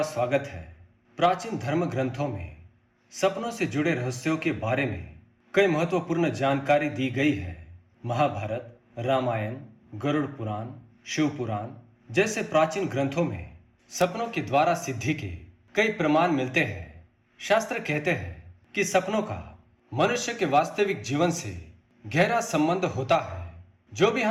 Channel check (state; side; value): identical; both; correlation 1.00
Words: स्वागत है। प्राचीन धर्म ग्रंथों में सपनों से जुड़े रहस्यों के बारे में कई महत्वपूर्ण जानकारी दी गई है। महाभारत, रामायण, गरुड़ पुराण, शिव पुराण जैसे प्राचीन ग्रंथों में सपनों के द्वारा सिद्धि के कई प्रमाण मिलते हैं। शास्त्र कहते हैं कि सपनों का मनुष्य के वास्तविक जीवन से गहरा संबंध होता है। जो भी